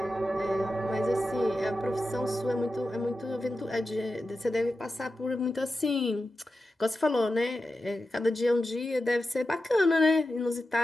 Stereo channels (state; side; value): normal; both; correlation 0.91